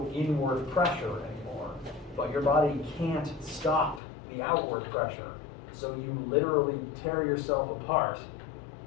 inward pressure anymore. But your body can't stop the outward pressure. So you literally tear yourself apart.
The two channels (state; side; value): drops out; right; at 4.0 s